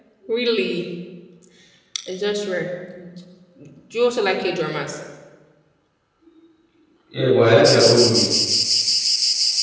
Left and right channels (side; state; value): both; identical; correlation 1.00